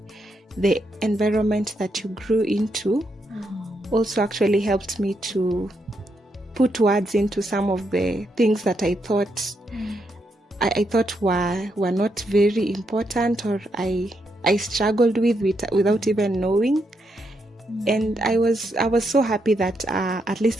the environment that you grew into, also actually helped me to put words into some of the things that I thought I thought were not very important, or I struggled with without even knowing. And I was so happy that at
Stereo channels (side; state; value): both; normal; correlation 0.80